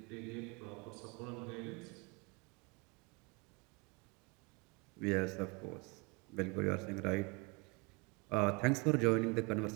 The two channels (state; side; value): quieter; left; 28.3 dB